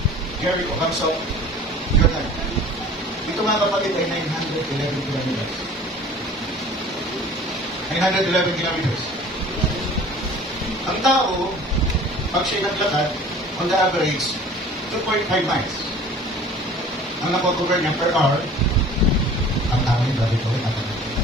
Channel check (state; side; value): normal; both; correlation 0.46